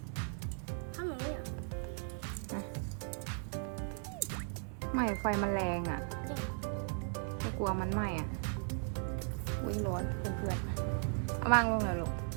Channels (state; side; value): silent; left; 53 dB below the other